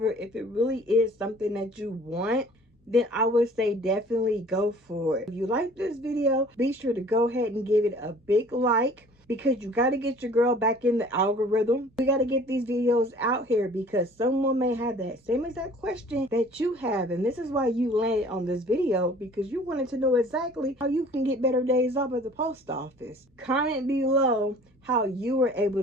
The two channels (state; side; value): normal; both; correlation 0.50